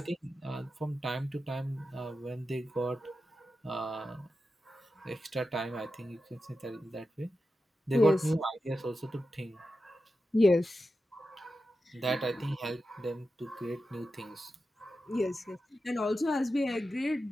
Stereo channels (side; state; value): both; normal; correlation 0.91